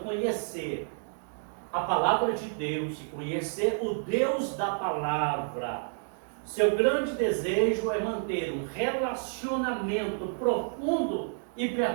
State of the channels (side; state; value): left; silent; 58 dB below the other